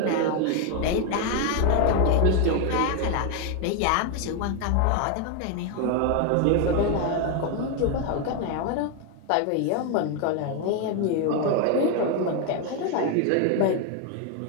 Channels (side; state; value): both; different; correlation 0.01